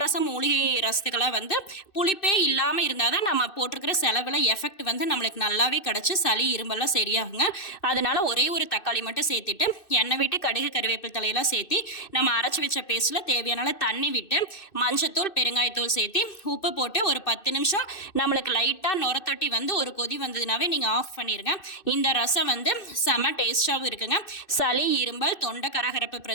மூலிகை ரசத்துக்கெல்லாம் வந்து புளிப்பே இல்லாமல் இருந்தால் தான் நம்ம போட்டிருக்கிற செலவில் எஃபெக்ட் வந்து நம்மளுக்கு நல்லாவே கிடச்சி சளி இரும்பெல்லாம் சரியாகுங்க. அதனால் ஒரே ஒரு தக்காளி மட்டும் சேர்த்துட்டு எண்ணெய் விட்டு கடுகு கருவேப்பிலை தலையெல்லாம் சேர்த்தி நம்ம அரைச்சி வச்ச பேஸ்ட்டில் தேவையான தண்ணி விட்டு மஞ்சத்தூள் பெருங்காயத்தூள் சேர்த்து உப்பு போட்டு ஒரு 10 நிமிஷம் நம்மளுக்கு லைட்டாக நுரத்தொட்டி வந்து ஒரு கொதி வந்ததுனாவே நீங்கள் ஆஃப் பண்ணிடுங்க. இந்த ரசம் வந்து செம டேஸ்டாகவும் இருக்குங்க. சளி இரும்பல் தொண்டை கரகரப்பு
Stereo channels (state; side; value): late; right; 2.6 ms